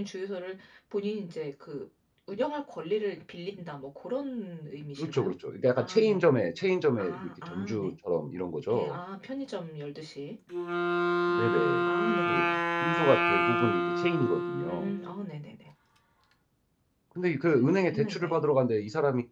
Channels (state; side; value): identical; both; correlation 1.00